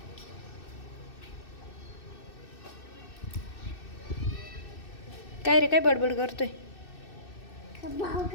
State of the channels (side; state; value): right; late; 2.6 ms